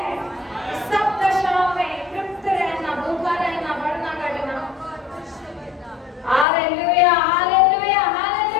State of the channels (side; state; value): right; drops out; at 6.5 s